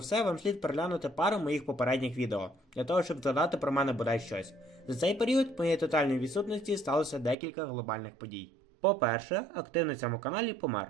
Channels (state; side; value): drops out; left; at 7.4 s